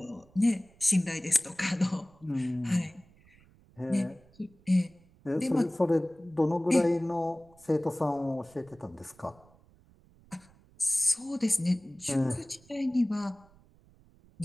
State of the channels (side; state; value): right; noise; rumble, 28 dB below the sound